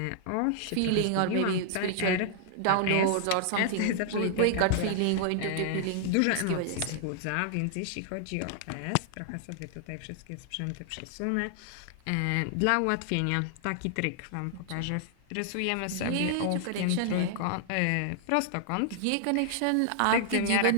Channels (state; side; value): different; both; correlation -0.01